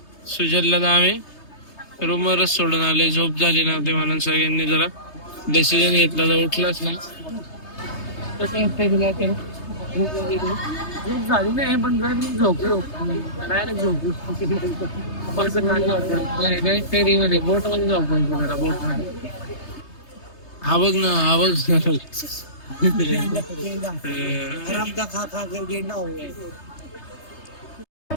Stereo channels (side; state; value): right; late; 3.3 ms